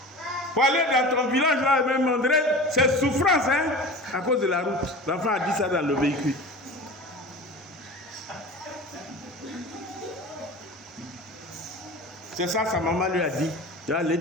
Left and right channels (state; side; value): normal; both; correlation 0.35